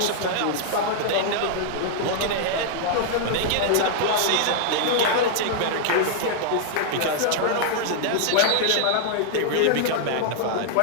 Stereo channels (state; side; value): different; both; correlation -0.01